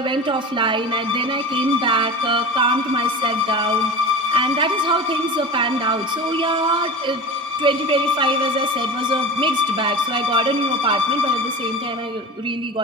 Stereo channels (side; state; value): both; normal; correlation 0.32